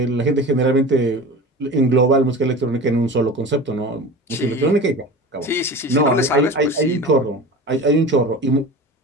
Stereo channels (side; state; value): both; normal; correlation 0.34